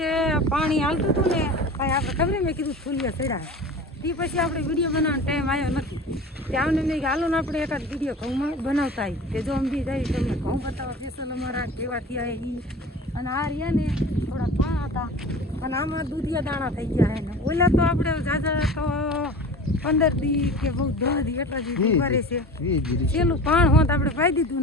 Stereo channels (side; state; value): both; normal; correlation 0.36